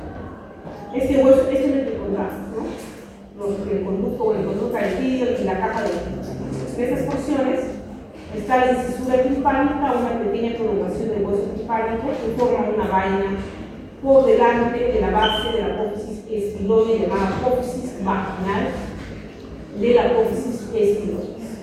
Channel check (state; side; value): identical; both; correlation 1.00